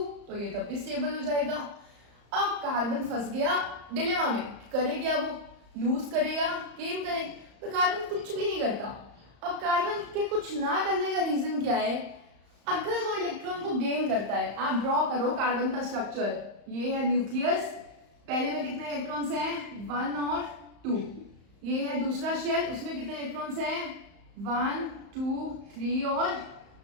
तो ये तब भी स्टेबल हो जाएगा। अब कार्बन फंस गया डिलेमा में, करे क्या वो लूज करेगा गेन करे, तो कार्बन कुछ भी नहीं करता। अब कार्बन के कुछ ना करने का रीजन क्या है, अगर वो इलेक्ट्रॉन को गेन करता है, आप ड्रॉ करो कार्बन का स्ट्रक्चर, ये है न्यूक्लियस, पहले में कितने इलेक्ट्रॉन्स हैं 1 और 2, ये है दूसरा शेल, उसमें कितने इलेक्ट्रॉन्स हैं 1 2 3 और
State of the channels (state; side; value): late; left; 35 ms